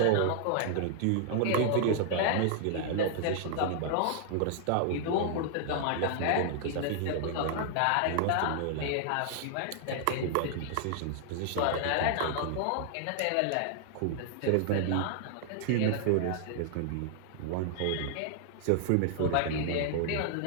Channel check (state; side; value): different; both; correlation 0.00